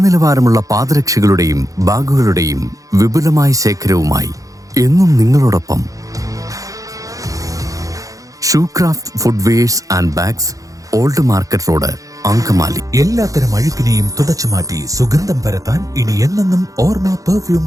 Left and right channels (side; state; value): left; late; 0.16 ms